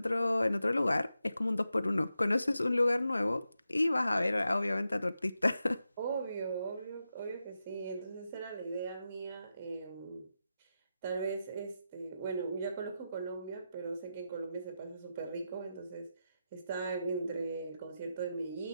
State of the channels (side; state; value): both; inverted; correlation -0.89